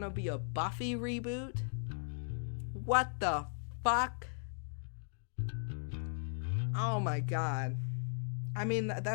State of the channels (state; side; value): silent; right; digital silence